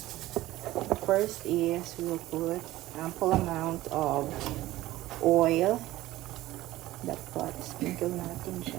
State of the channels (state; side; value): quieter; left; 16.4 dB